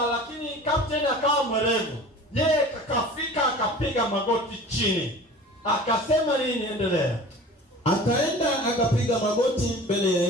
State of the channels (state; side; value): normal; both; correlation 0.41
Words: lakini captain akawa mwerevu. Yeye akafika akapiga magoti chini. Akasema nini? Endelea. Akaenda akapiga magoti mbele ya